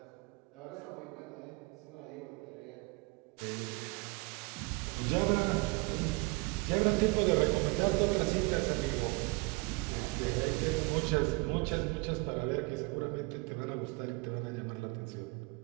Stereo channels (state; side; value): quieter; left; 26.8 dB